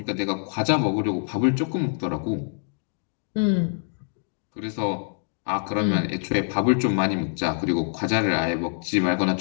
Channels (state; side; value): silent; right; digital silence